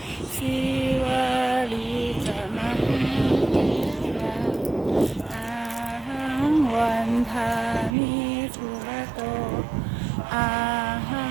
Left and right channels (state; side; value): drops out; left; at 7.9 s